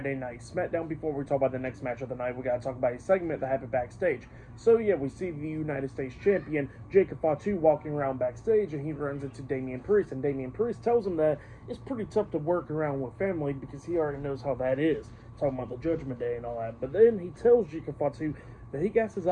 night SmackDown, before we talk about the next match of the night, we gotta talk about a segment that happened backstage. So, yeah, we see the United States Champion, Jacob Fatu, walking around backstage, and he runs into Damian Priest, and Damian Priest tells him that it's pretty tough to work around with family because he already knows how that is, talking about the Judgment Day and all that. But then he tells Jacob Fatu that he got his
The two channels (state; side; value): identical; both; correlation 1.00